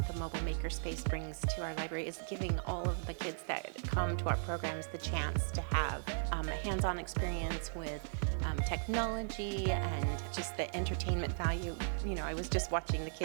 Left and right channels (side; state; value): left; silent; 53 dB below the other